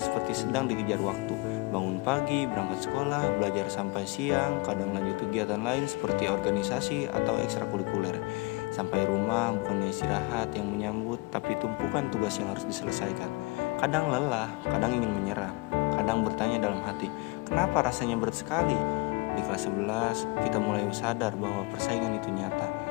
sedang dikejar waktu. Bangun pagi, berangkat sekolah, belajar sampai siang, kadang lanjut kegiatan lain seperti organisasi atau ekstrakurikuler. Sampai rumah bukannya istirahat yang menyambut, tapi tumpukan tugas yang harus diselesaikan. Kadang lelah, kadang ingin menyerah, kadang bertanya dalam hati, kenapa rasanya berat sekali? Di kelas 11, kita mulai sadar bahwa persaingan itu nyata.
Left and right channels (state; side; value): quieter; right; 25.7 dB